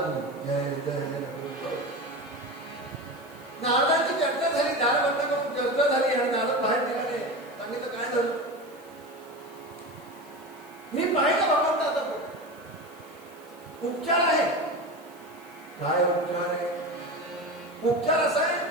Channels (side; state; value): right; noise; hiss, 27 dB below the sound